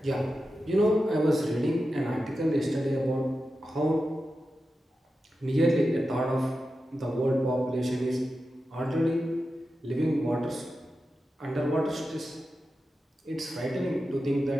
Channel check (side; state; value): both; normal; correlation 0.91